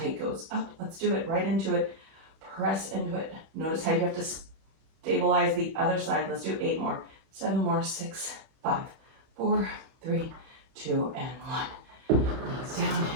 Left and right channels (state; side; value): late; left; 31 ms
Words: leg goes up. Let's do it, right into it. Press into it. Notice how you have to stabilize the other side. Let's do 8 more, 7 more, 6, 5, 4, 3, 2, and 1. Knees down,